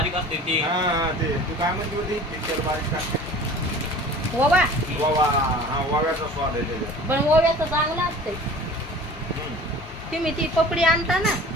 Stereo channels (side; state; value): both; normal; correlation 0.43